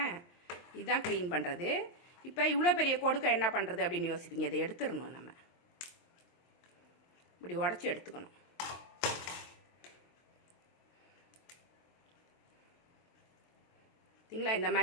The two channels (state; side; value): late; right; 23 ms